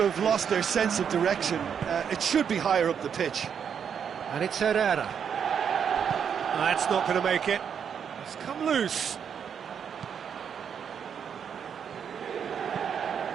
have lost their sense of direction. It should be higher up the pitch. And it's Herrera. That's not going to make it. It's come loose.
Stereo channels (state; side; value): quieter; left; 7.6 dB